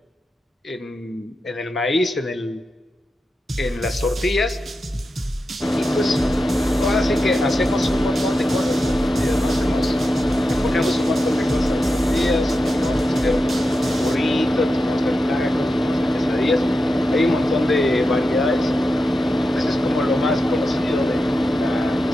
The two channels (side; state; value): both; normal; correlation 0.90